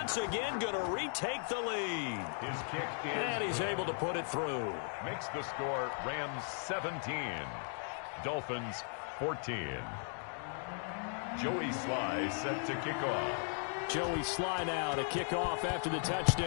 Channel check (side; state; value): right; silent; 53 dB below the other